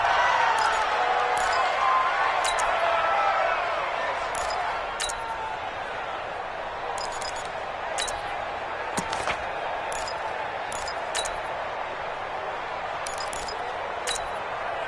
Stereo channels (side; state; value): both; identical; correlation 1.00